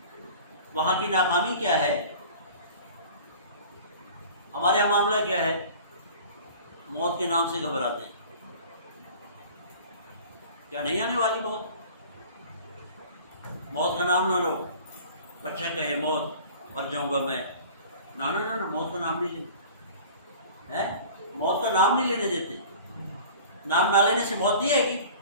وہاں کی ناکامی کیا ہے؟ ہمارے یہاں معاملہ کیا ہے؟ موت کے نام سے گھبراتے ہیں. کیا نہیں آنے والی موت؟ موت کا نام نہ لو. بچہ کہے موت مر جاؤں گا میں، نہ موت کا نام نہیں لیتے. موت کا نام نہیں لینے دیتے. نام نہ لینے سے موت نہیں آئے گی.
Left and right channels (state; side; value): inverted; both; correlation -0.43